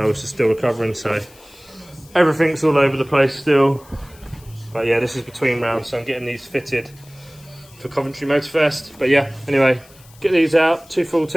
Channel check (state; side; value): noise; left; hiss, 25 dB below the sound